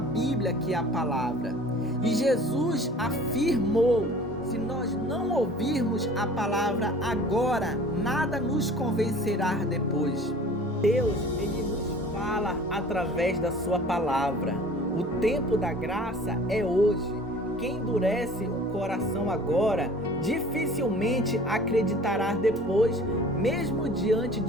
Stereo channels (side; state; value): both; normal; correlation 0.46